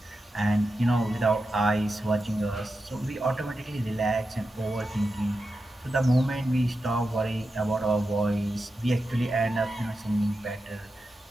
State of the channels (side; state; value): both; normal; correlation 0.90